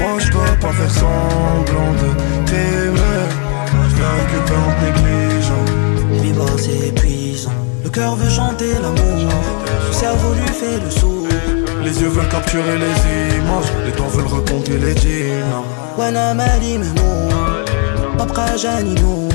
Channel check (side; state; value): right; quieter; 38.2 dB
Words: je peux pas faire semblant de t'aimer. Je vais récupérer en te négligeant. Biba c'est épuisant. Le cœur veut chanter l'amour. Le cerveau lui fait le sourd. Les yeux veulent capturer les images. Les doigts veulent recompter les dinars. وانا مالي مهموم مبقى جاني نوم